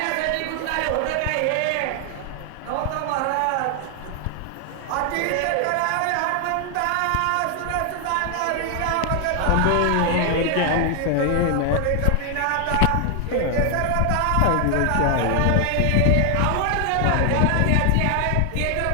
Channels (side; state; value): both; different; correlation 0.00